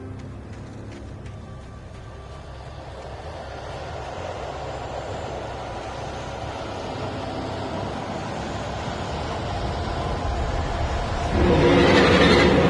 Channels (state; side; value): identical; both; correlation 1.00